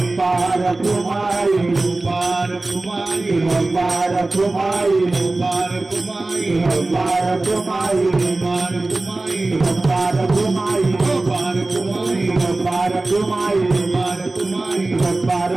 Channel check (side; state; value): left; quieter; 3.1 dB